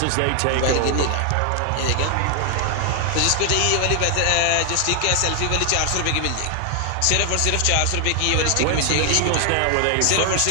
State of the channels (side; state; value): both; different; correlation 0.00